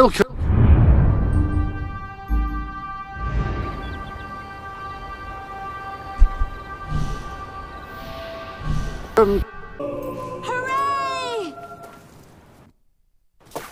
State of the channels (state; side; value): identical; both; correlation 1.00